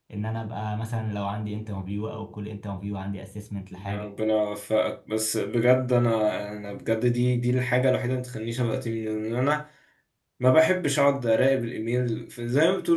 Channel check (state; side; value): identical; both; correlation 1.00